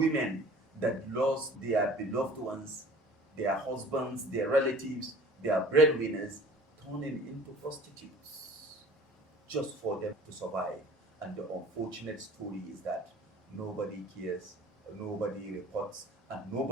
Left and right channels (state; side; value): normal; both; correlation 0.47